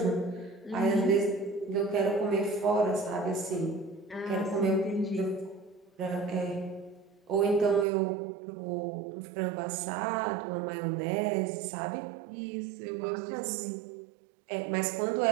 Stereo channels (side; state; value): left; drops out; at 7.9 s